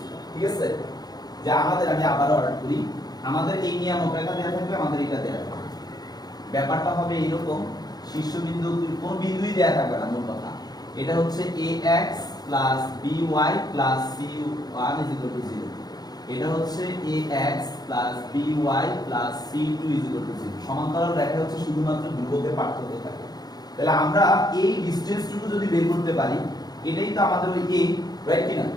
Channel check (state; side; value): late; right; 0.19 ms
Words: ঠিক আছে? যে আমাদের আমি আবার অর্ডার করি, আমাদের এই নিয়ামক রেখা দেওয়া থাকবে, আমাদের এটা দেওয়া থাকবে। ব্যাপারটা হবে এরকম, শীর্ষবিন্দু কোন বিন্দুই দেওয়া থাকবে না মূল কথা। এটা হচ্ছে ax by c1 0। এটা হচ্ছে ax by c2 0। সমান্তরাল রেখা হচ্ছে শুধুমাত্র ধ্রুবকের পার্থক্য থাকে। তাহলে আমরা এই ডিসটেন্সটুকু যদি বের করতে পারি, এটাই তো আমাদের ওই a, রাইট কি না?